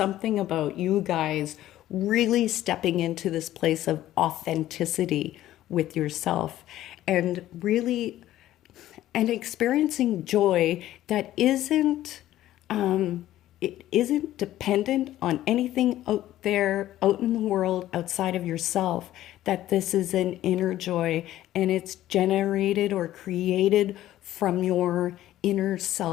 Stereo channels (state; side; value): quieter; right; 13.8 dB